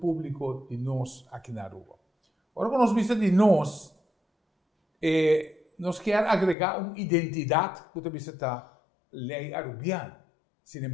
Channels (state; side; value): drops out; right; at 6.6 s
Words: de nós aqui na Aruba. Agora, quando nós vimos de nós quer agregar uma identidade que você está lei arubiana. Sin